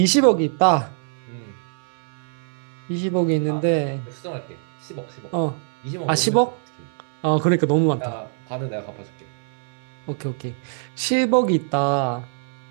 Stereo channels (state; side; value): silent; left; 63 dB below the other